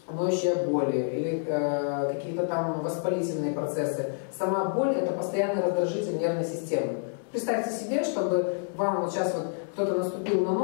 ноющие боли или какие-то там воспалительные процессы. Сама боль – это постоянный раздражитель нервной системы. Представьте себе, чтобы вам вот сейчас вот кто-то наступил на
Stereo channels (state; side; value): silent; right; 59 dB below the other